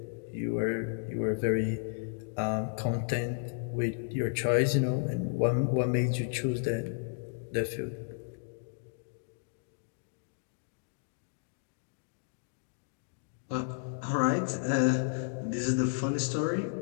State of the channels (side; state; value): right; silent; digital silence